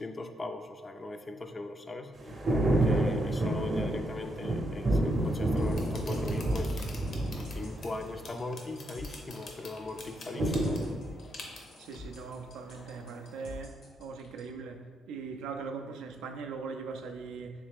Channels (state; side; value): normal; both; correlation 0.79